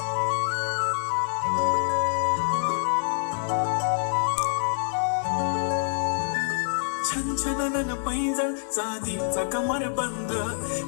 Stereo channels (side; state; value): right; silent; digital silence